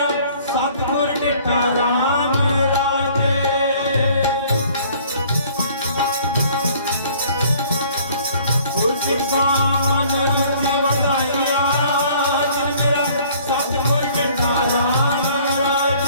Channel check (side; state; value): both; inverted; correlation -0.55